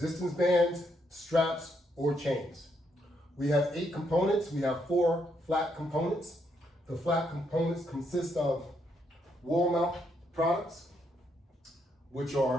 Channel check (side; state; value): both; normal; correlation 0.76